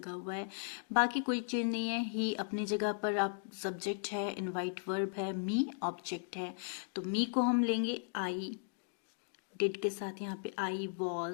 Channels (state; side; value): silent; right; digital silence